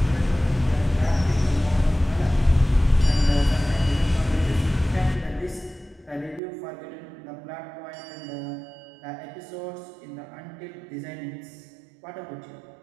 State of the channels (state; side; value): drops out; left; at 6.4 s